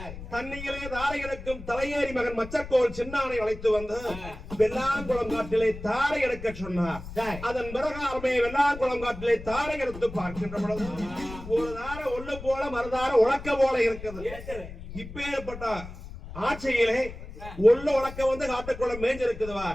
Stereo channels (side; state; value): left; noise; rumble, 12 dB below the sound